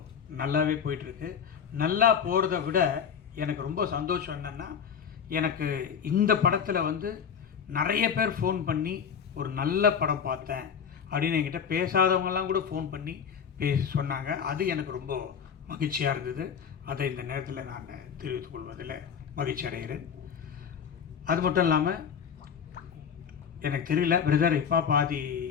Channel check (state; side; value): quieter; right; 7.4 dB